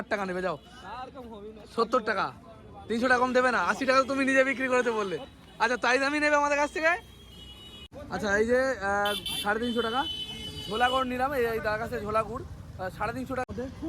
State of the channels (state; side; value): identical; both; correlation 1.00